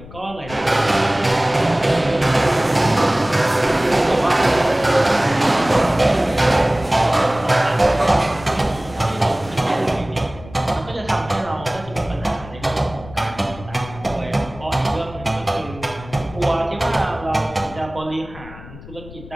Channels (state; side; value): noise; left; rumble, 17 dB below the sound